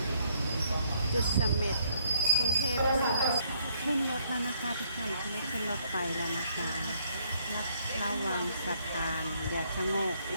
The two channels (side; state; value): both; inverted; correlation -0.69